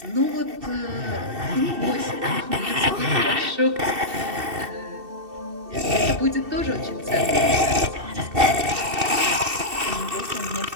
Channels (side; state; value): left; late; 2.7 ms